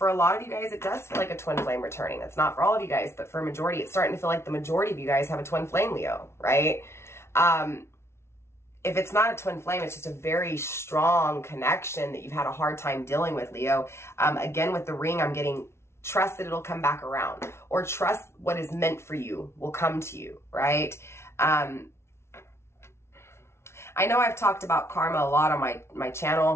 a lot of you guys, it does feel like a twin flame returning. That's not for all of you guys, but for a majority, it's starting to feel like the majority of you guys have a twin flame, Leo, right? If it's not a twin flame, it's just a very strong connection that you've had a hard time dealing with, Leo. Again, with the ring, I'm getting trust that it'll come back around, or trust what is meant for you will come to you, right? I know I've talked about karma a lot on my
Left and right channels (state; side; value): late; right; 0.13 ms